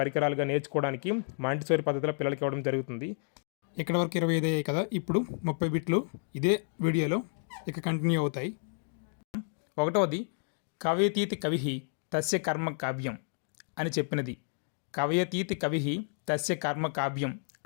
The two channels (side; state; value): right; silent; 57 dB below the other